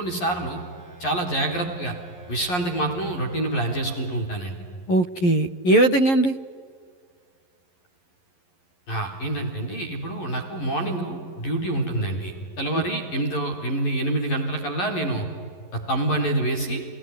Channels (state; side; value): late; right; 11 ms